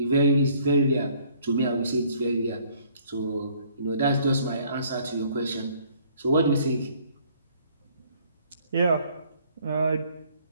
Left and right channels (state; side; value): inverted; both; correlation -0.60